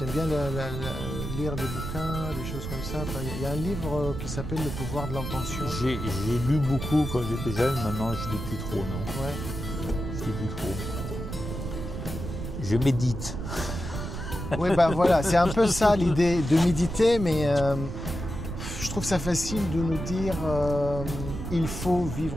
bien lire des bouquins, des choses comme ça. Il y a un livre qui s'appelle Le pouvoir de l'intention. J'ai lu beaucoup quand j'étais jeune, maintenant je ne lis plus trop, non. Ouais. Je lis plus trop. Je médite. Oui, bah voilà, c'est un peu ça l'idée de méditer, mais je trouve ça facile de nous dire il faut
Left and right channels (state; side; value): noise; right; rumble, 6 dB below the sound